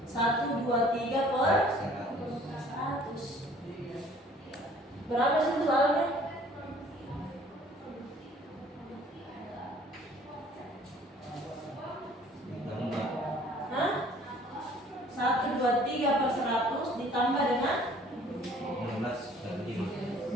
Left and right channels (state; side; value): normal; both; correlation 0.54